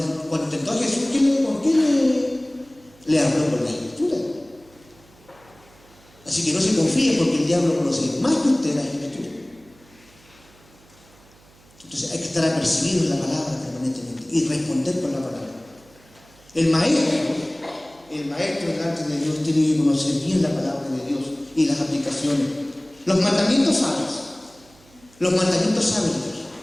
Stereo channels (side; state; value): right; noise; hum, 28 dB below the sound